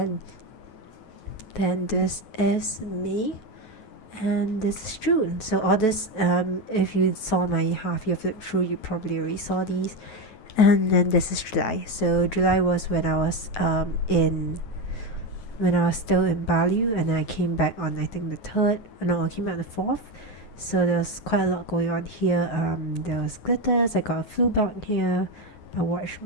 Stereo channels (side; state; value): right; late; 9.2 ms